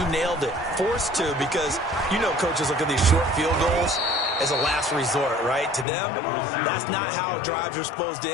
nailed it. Forced to, because you know coaches look at these short field goals as a last resort, right? To them, that's not how drives are supposed to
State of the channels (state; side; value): drops out; right; at 5.9 s